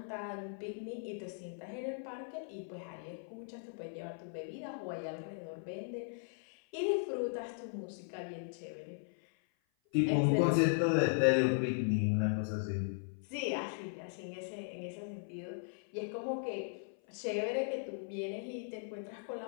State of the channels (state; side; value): silent; right; 53 dB below the other